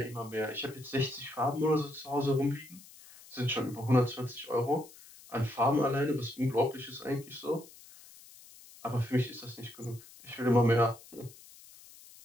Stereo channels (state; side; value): noise; left; hiss, 21 dB below the sound